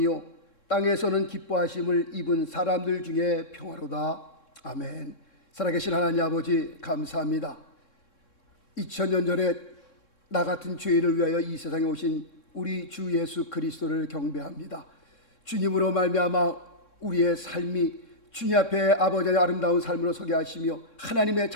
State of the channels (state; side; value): late; right; 3.6 ms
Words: 땅에서는 기뻐하심을 입은 사람들 중에 평화로다. 아멘. 살아계신 하나님 아버지 감사합니다. 2000년 전에 나 같은 죄인을 위하여 이 세상에 오신 우리 주 예수 그리스도를 경배합니다. 주님으로 말미암아 우리의 삶이 주님 앞에 아버지의 아름다운 삶으로 서게 하시며 하나님의